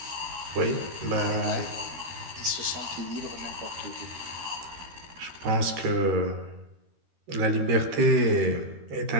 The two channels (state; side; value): late; left; 13 ms